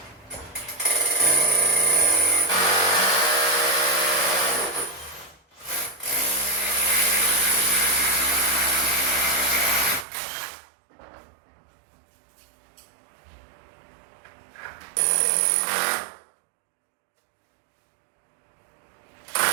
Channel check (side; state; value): left; drops out; at 10.1 s